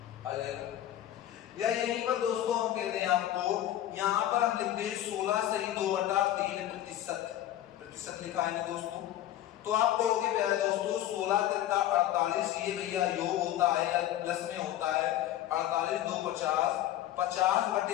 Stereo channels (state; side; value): quieter; right; 12.7 dB